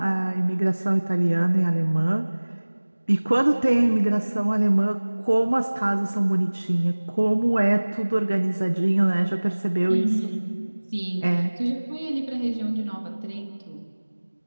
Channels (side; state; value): both; inverted; correlation -1.00